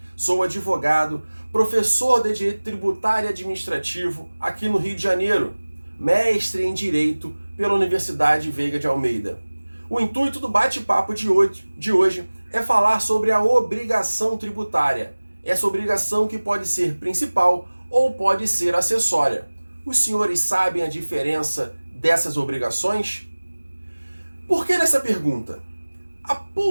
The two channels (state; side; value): inverted; both; correlation -1.00